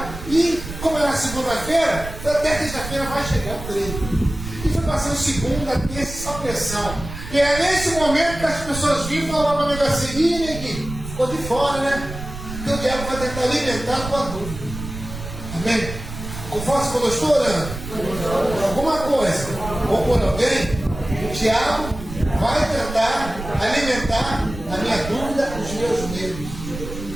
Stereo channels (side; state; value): right; noise; rumble, 10 dB below the sound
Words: e, como era segunda-feira, até terça-feira vai chegar o treino. E foi passando segunda, terça, só pressão. E é nesse momento que as pessoas vinham e falavam para mim assim: ih, neguinho, ficou de fora, né? Porque o diabo vai tentar alimentar a tua dúvida. Amém? Conforme quando eu estou orando, alguma coisa, ou por alguém, o diabo vai tentar alimentar a minha dúvida, os meus medos.